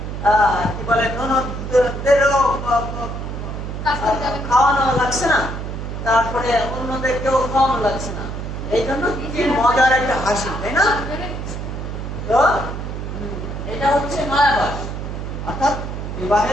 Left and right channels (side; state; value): right; noise; hum, 6 dB below the sound